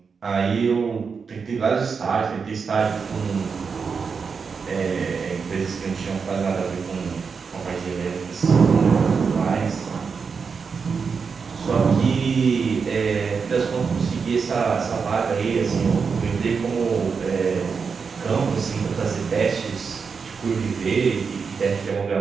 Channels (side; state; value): left; quieter; 5.5 dB